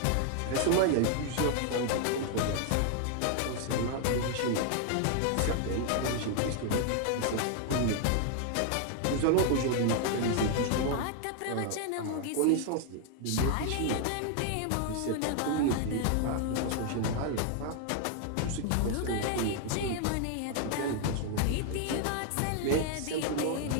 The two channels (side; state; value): both; different; correlation 0.00